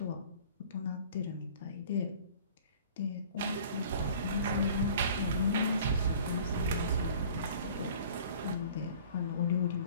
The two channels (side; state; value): both; inverted; correlation -0.48